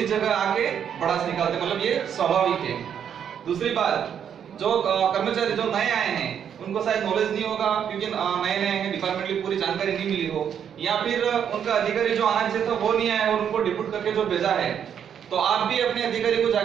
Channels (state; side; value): quieter; left; 8.5 dB